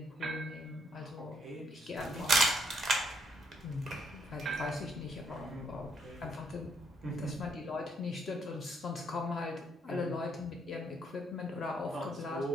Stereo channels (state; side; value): normal; both; correlation 0.72